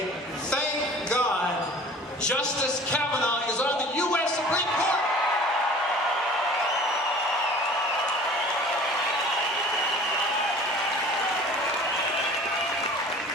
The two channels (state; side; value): normal; both; correlation 0.45